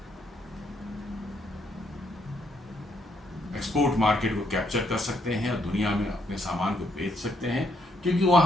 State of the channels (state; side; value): normal; both; correlation 0.74